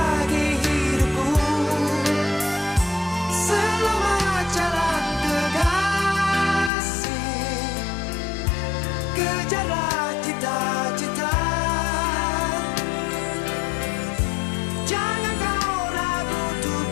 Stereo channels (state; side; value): drops out; right; at 6.7 s